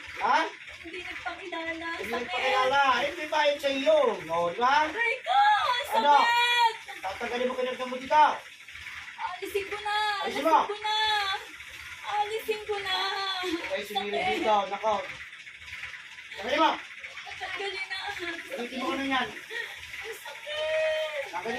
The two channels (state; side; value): identical; both; correlation 1.00